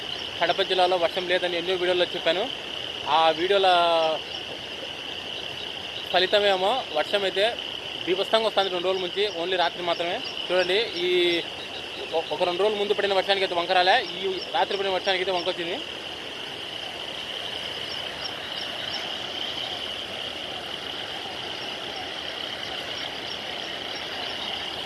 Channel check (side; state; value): both; identical; correlation 1.00